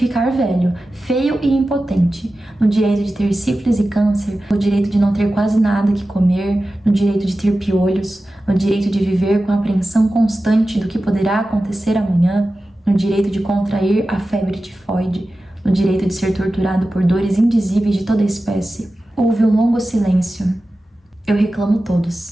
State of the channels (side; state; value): both; normal; correlation 0.94